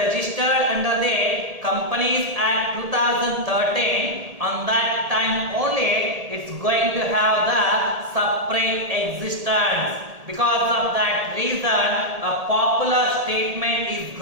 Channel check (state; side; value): late; left; 1.7 ms